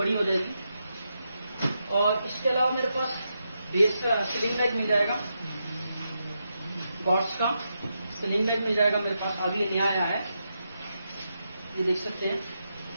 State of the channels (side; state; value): both; inverted; correlation -0.85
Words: हो जाएगी। और इसके अलावा मेरे पास बेस का स्लिंग बैग मिल जाएगा, बॉट्स का स्लिंग बैग मिल जाएगा मेरे पास, अभी नया आया है, ये देख सकते हैं।